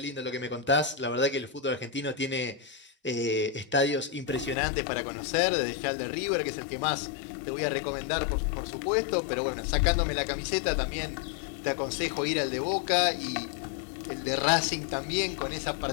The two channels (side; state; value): right; drops out; at 4.5 s